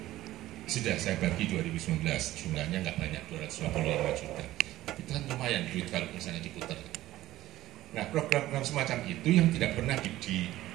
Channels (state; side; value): quieter; left; 15.3 dB